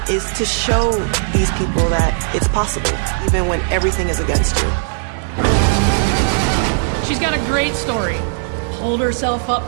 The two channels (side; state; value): left; silent; 55 dB below the other